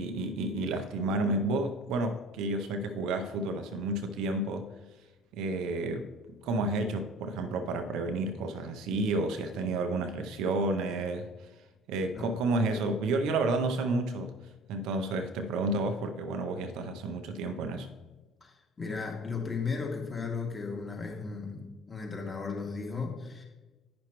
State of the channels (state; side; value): normal; both; correlation 0.44